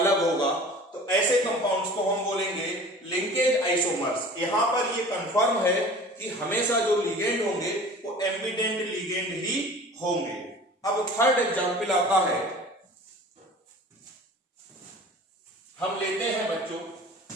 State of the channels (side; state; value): both; normal; correlation 0.42